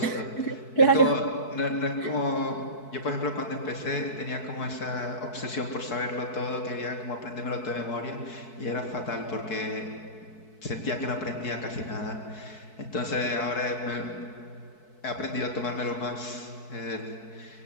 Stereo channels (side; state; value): right; late; 4.6 ms